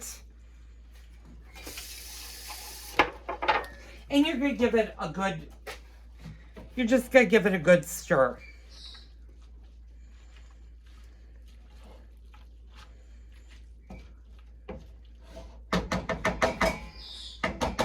And you're going to give it a good, you're just going to give it a good stir.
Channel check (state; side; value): identical; both; correlation 1.00